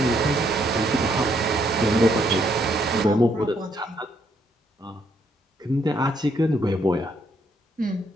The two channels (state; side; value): normal; both; correlation 0.72